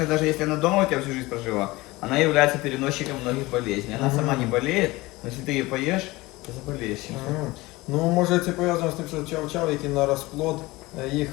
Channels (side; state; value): right; quieter; 20.8 dB